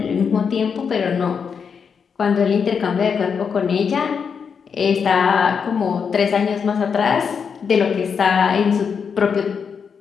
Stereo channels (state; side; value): quieter; right; 6.4 dB